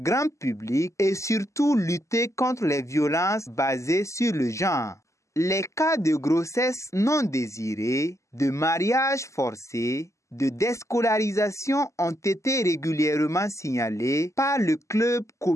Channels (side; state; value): right; late; 0.14 ms